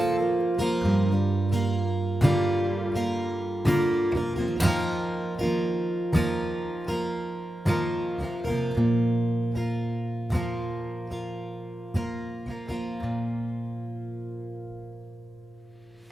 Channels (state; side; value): normal; both; correlation 0.91